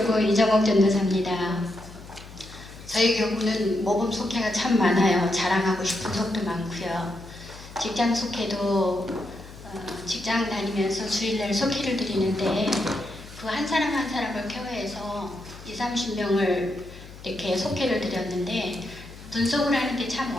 이정옥 전도사입니다. 저희 교구는 모범 속회가 참 많아요. 자랑하고 싶은 속도 많고요. 직장 속회도 직장 다니면서 주일날 속회를 드리는데 그 한 사람 한 사람을 케어해서 20-30명을 이렇게 속회를 드렸는데 분석을 하는 게 참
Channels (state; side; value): noise; left; hum, 17 dB below the sound